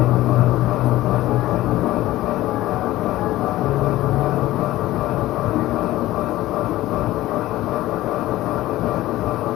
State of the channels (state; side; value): quieter; right; 16.2 dB